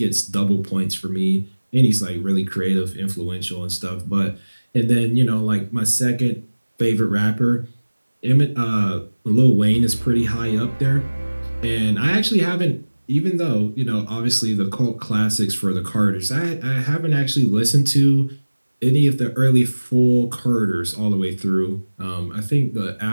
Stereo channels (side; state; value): both; inverted; correlation -1.00